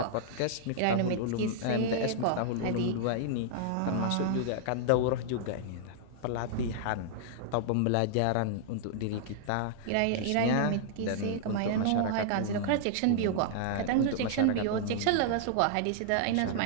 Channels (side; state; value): both; different; correlation -0.01